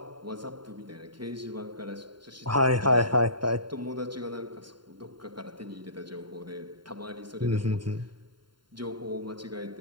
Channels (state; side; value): late; left; 0.72 ms